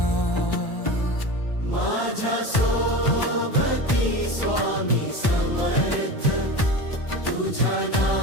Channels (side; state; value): right; late; 1.1 ms